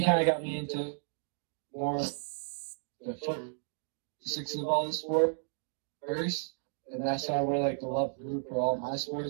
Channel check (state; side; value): silent; left; digital silence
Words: kind of got me into more the foot, six of all the sport first, and that's how I really like the love group for all my